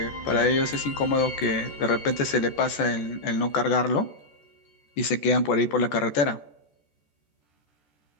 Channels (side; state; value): right; late; 14 ms